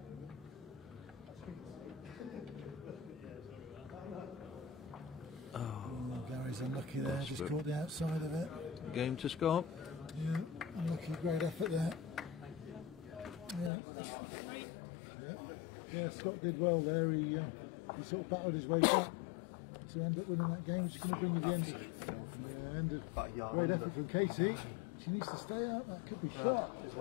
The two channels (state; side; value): drops out; right; at 13.7 s